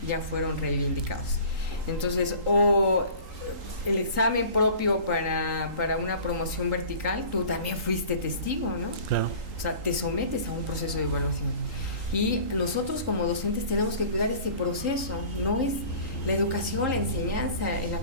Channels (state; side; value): late; left; 3.8 ms